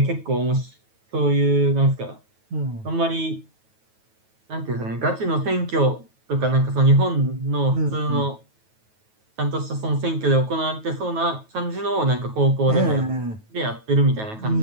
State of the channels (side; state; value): left; late; 9.2 ms